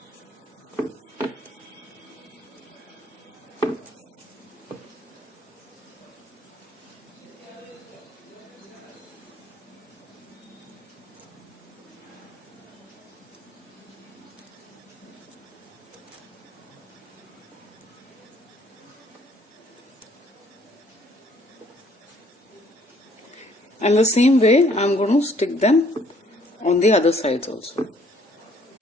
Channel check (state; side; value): normal; both; correlation 0.62